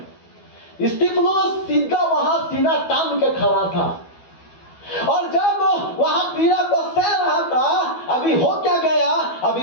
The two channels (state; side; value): late; right; 12 ms